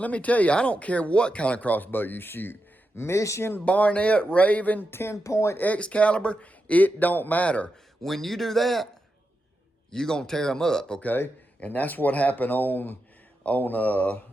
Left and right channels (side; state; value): both; normal; correlation 0.88